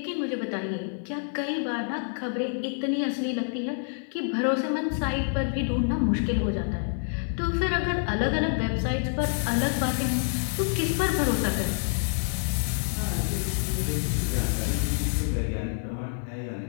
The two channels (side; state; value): right; silent; 60 dB below the other